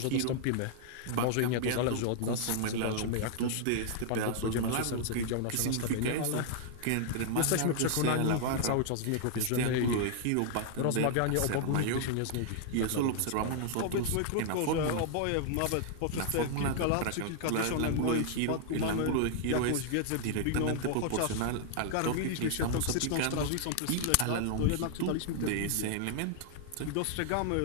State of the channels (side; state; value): both; different; correlation -0.01